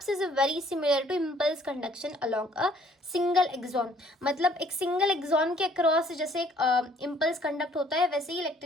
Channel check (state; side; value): normal; both; correlation 0.60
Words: is very similar to impulse conduction along a single axon. मतलब एक single axon के across जैसे एक impulse conduct होता है वैसे ही